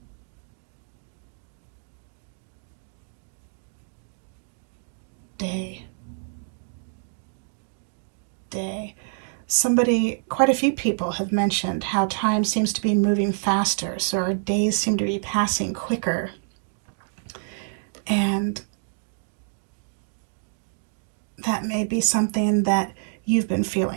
Day. Quite a few people have mentioned how time seems to be moving faster, so our days seem to be passing quicker. And that may be something that you've been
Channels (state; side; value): silent; left; digital silence